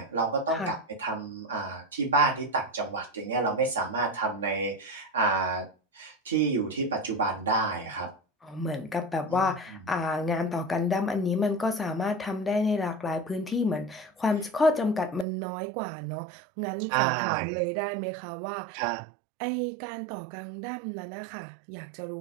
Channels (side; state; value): left; drops out; at 15.2 s